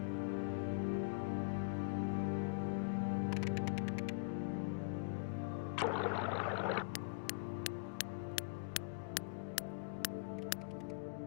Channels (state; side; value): quieter; right; 38.4 dB